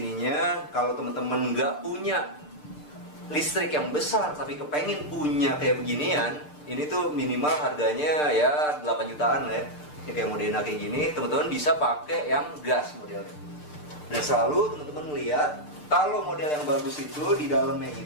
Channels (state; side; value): late; right; 6.7 ms